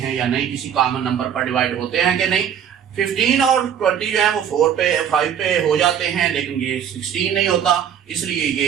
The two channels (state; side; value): quieter; left; 8.7 dB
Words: या नहीं, किसी कॉमन नंबर पर डिवाइड होते हैं कि नहीं। 15 और 20 जो है वो 4 पे 5 पे हो जाते हैं, लेकिन ये 16 नहीं होता, इसलिए